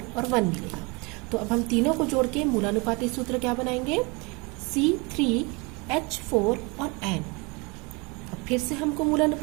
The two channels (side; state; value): left; quieter; 28.6 dB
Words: और 1 मिलेगा। तो अब हम तीनों को जोड़ के मूलानुपाती सूत्र क्या बनाएंगे, C3H4 और N। अब फिर से हमको